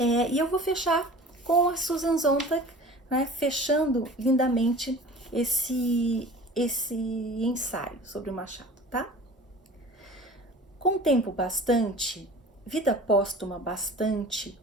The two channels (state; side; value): normal; both; correlation 0.42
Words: eu vou fechar com a Susan Sontag, né? Fechando lindamente esse ensaio sobre o Machado, tá? Com tempo bastante, vida póstuma bastante,